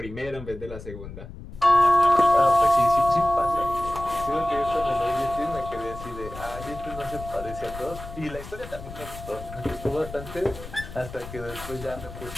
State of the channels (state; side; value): noise; left; rumble, 13 dB below the sound